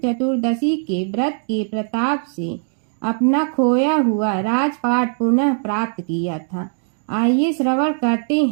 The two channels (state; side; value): silent; left; 65 dB below the other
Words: चतुर्दशी के व्रत के प्रताप से अपना खोया हुआ राजपाट पुनः प्राप्त किया था। आइए श्रवण करते